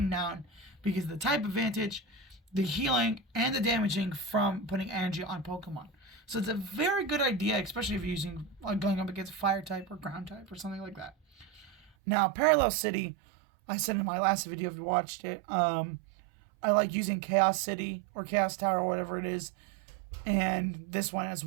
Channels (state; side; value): drops out; left; at 11.9 s